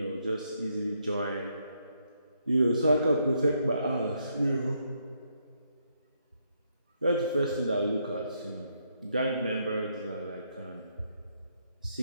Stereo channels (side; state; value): both; inverted; correlation -0.76